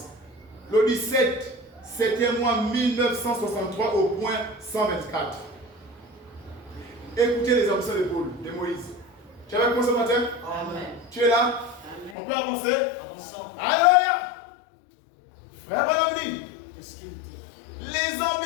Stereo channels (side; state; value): right; drops out; at 12.2 s